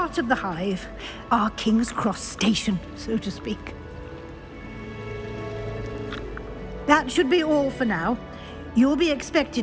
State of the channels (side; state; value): both; identical; correlation 1.00